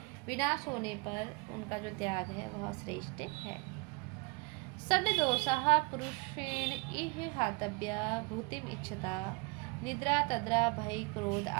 विनाश होने पर उनका जो त्याग है वह श्रेष्ठ है। षड्दोषाः पुरुषेण इह हातव्या भूतिम इच्छता निद्रा तद्रा भय क्रोध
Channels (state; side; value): quieter; left; 30.2 dB